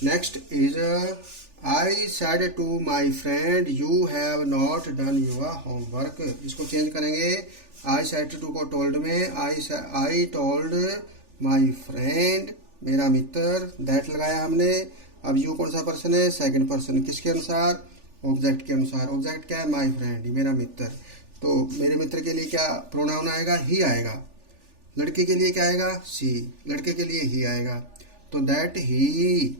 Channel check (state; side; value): late; left; 3.4 ms